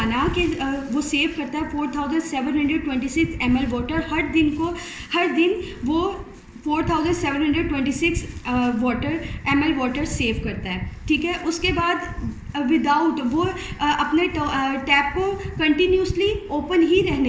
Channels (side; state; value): both; identical; correlation 1.00